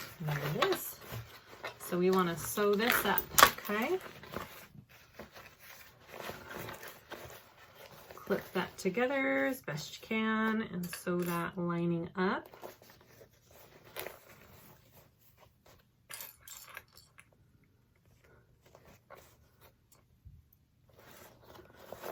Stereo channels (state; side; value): identical; both; correlation 1.00